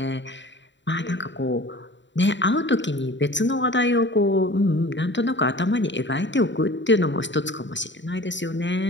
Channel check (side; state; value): right; late; 0.53 ms